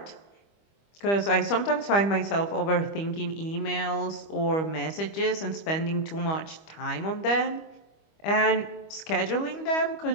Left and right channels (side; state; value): right; late; 25 ms